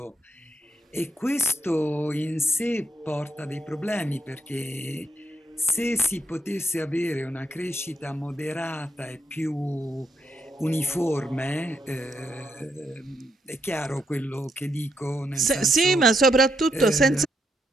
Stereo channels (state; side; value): normal; both; correlation 0.79